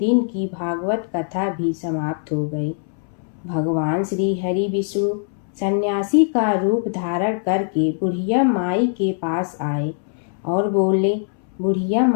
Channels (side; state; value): right; silent; 64 dB below the other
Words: की भागवत कथा भी समाप्त हो गई। भगवान श्री हरि विष्णु सन्यासी का रूप धारण करके बुढ़िया माई के पास आए और बोले, बुढ़िया